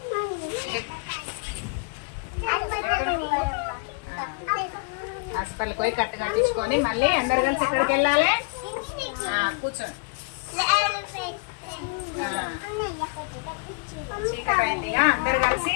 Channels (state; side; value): quieter; right; 34.3 dB